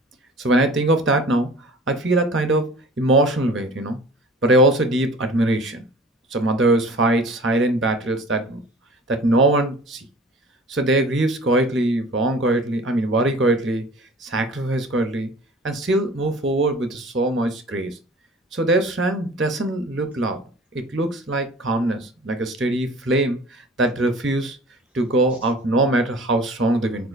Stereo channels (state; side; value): normal; both; correlation 0.44